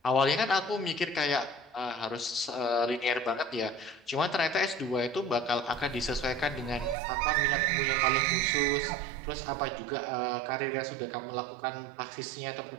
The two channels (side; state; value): left; drops out; at 7.0 s